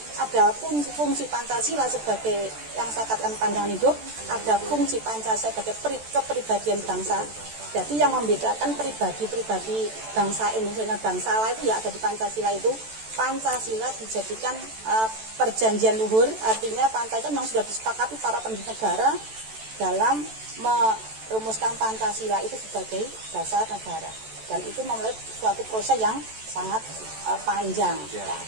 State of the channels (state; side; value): late; left; 14 ms